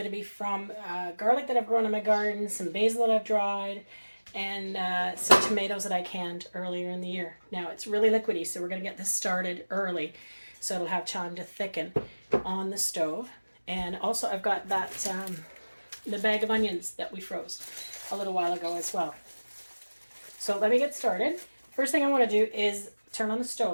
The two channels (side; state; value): both; inverted; correlation -1.00